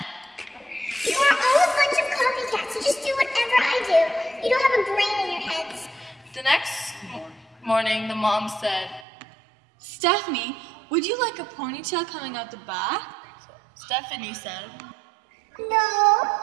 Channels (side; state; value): left; drops out; at 9.1 s